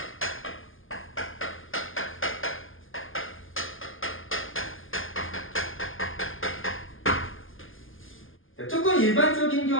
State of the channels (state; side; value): late; right; 0.59 ms